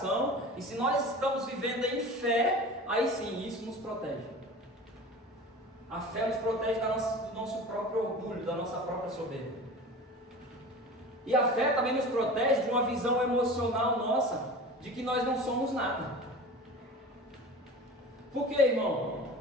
e se nós estamos vivendo em fé, aí sim, isso nos protege. A fé nos protege do nosso próprio orgulho, da nossa própria soberba. E a fé também nos protege de uma visão emocional nossa, de que nós não somos nada. Por quê, irmão?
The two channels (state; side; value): normal; both; correlation 0.36